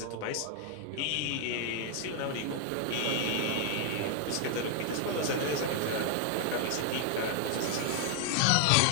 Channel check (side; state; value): both; different; correlation 0.00